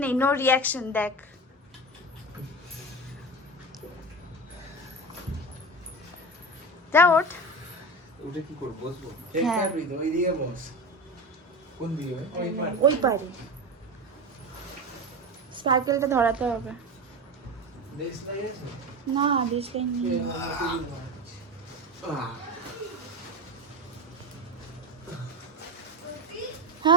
নেই, নো রিয়াকশন। দেখ যা ওঠ। উঠে কি করব? বসবো? হ্যাঁ ওই দিকে বস। কোন দিকে? ওই পারে স্পার্কেলটা ধরাতে হবে। দেশ নাই আছে? না বেশ নেই।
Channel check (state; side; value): normal; both; correlation 0.24